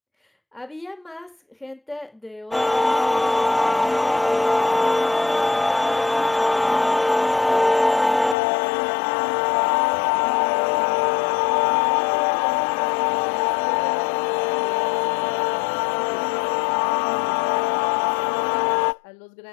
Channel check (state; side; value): drops out; right; at 8.3 s